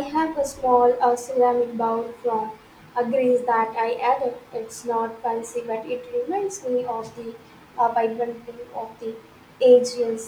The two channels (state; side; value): identical; both; correlation 1.00